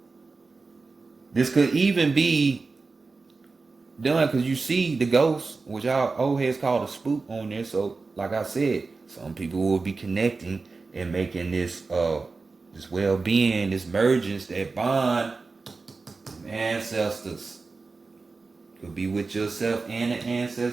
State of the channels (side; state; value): left; quieter; 4.1 dB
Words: this could even be done because you see the ghost, which our old heads called a spook on there. So like I said, some people will be connecting and making this this well-being, this mergence, that bond, ancestors. Could be with yourself and the